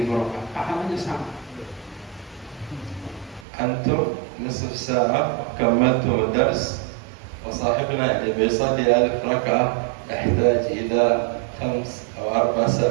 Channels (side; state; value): left; drops out; at 3.5 s